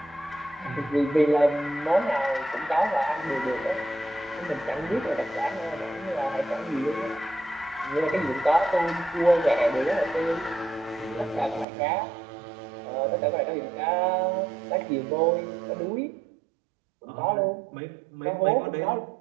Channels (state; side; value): drops out; left; at 11.7 s